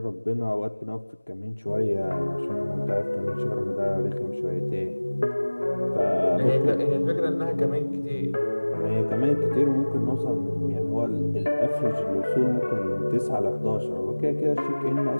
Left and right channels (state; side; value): inverted; both; correlation -1.00